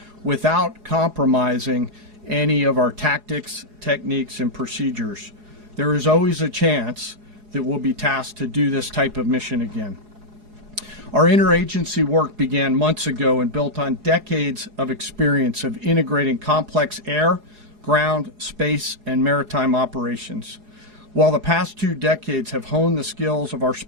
without compromising any of our tactics, techniques, and procedures. There is always a chance that we'll be tasked to do this type of mission again. Our interagency work began months ago and built on decades of experience of integrating complex air, ground, space, and maritime operations. While the past 2 decades have honed the skills of our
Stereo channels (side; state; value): left; late; 4.8 ms